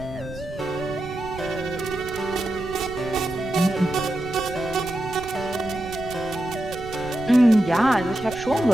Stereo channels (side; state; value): right; noise; rumble, 14 dB below the sound